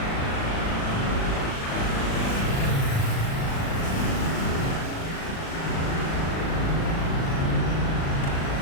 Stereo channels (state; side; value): late; right; 37 ms